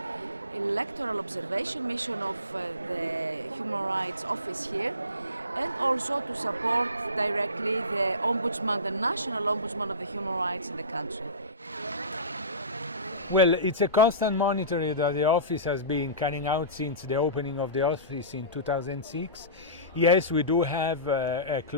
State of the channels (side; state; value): both; inverted; correlation -0.32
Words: electoral observation mission of the Human Rights Office here, and also to support directly the Ombudsman, the National Ombudsman of the Human Rights in the country. Well, it's a constant monitoring that the office has been carrying out since the opening of the office in 2006. Yes, we do have a